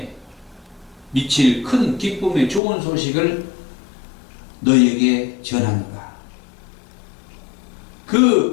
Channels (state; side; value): drops out; right; at 2.6 s